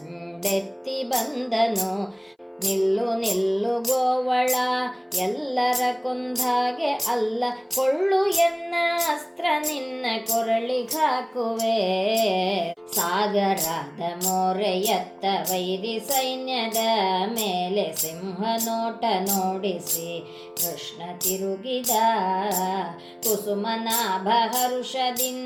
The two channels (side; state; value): both; identical; correlation 1.00